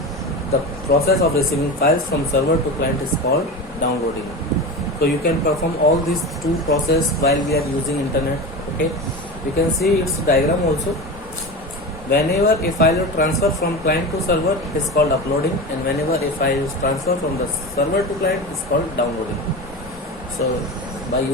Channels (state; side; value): normal; both; correlation 0.27